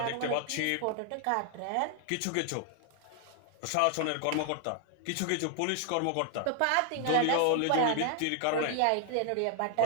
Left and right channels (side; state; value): both; different; correlation 0.00